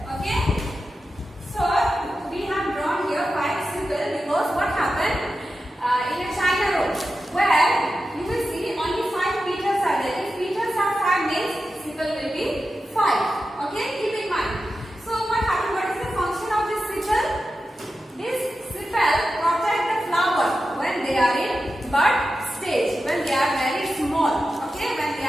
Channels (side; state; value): both; normal; correlation 0.91